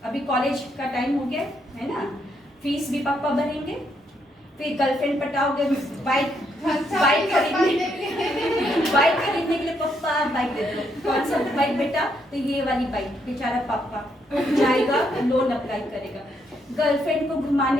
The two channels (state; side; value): normal; both; correlation 0.75